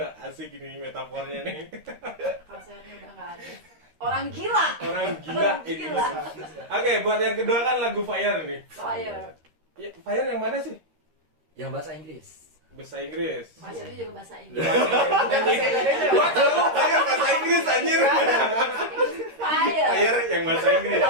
Asik ini metafornya nih. Kalau sehatnya udah nggak ada. Orang gila. Orang gila Orang ini. gila. Oke, buat yang kedua kan lagu Fire nih. Fire. Ya, Fire yang mana sih? Yang bahasa Inggris. Bahasa Inggris. Fire itu juga bahasa Inggris. Bukan bahasa Indonesia. Gua tahu Fire bahasa Inggris anjir. Fire. Fire yang bahasa Inggris.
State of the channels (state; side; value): late; left; 13 ms